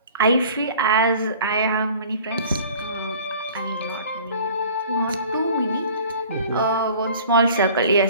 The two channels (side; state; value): both; inverted; correlation -0.47